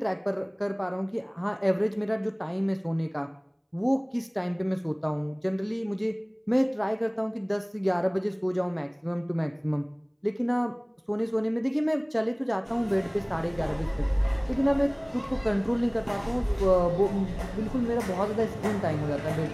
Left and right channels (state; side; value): identical; both; correlation 1.00